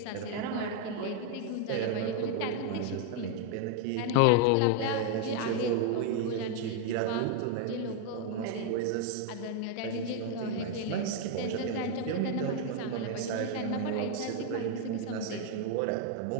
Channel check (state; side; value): different; both; correlation 0.00